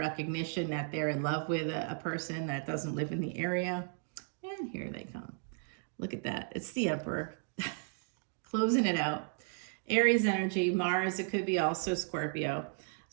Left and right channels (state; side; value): silent; left; 55 dB below the other